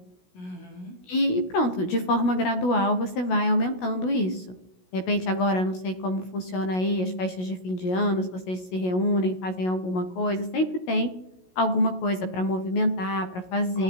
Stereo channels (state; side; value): late; right; 16 ms